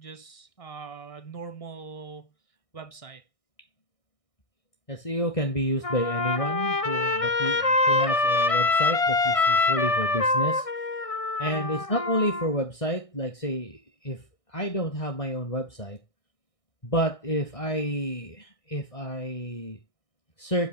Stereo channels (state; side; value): late; right; 1.6 ms